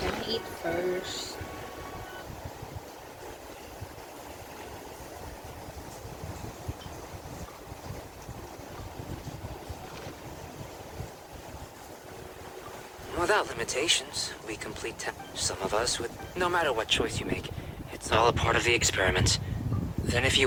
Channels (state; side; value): identical; both; correlation 1.00